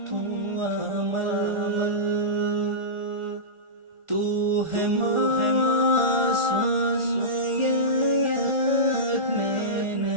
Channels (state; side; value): late; left; 1.4 ms